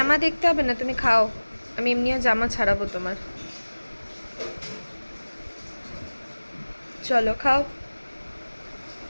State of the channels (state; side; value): inverted; both; correlation -1.00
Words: দেখতে হবে না, তুমি খাও, আমি এমনিও জামা ছাড়াবো তোমার। চলো খাও।